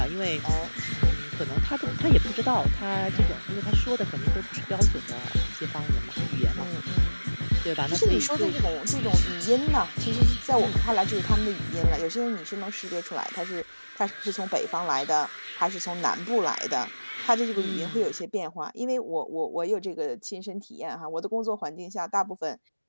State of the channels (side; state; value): both; inverted; correlation -1.00